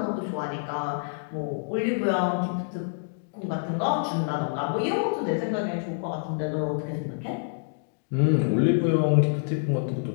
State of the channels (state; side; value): silent; right; digital silence